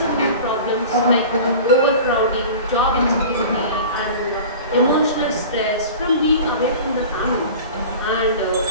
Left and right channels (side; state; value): both; inverted; correlation -0.38